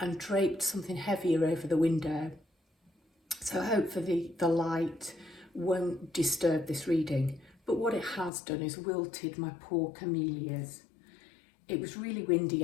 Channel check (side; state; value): right; drops out; at 8.3 s